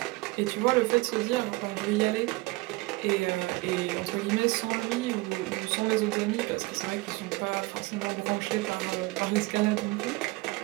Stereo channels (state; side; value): quieter; left; 22.2 dB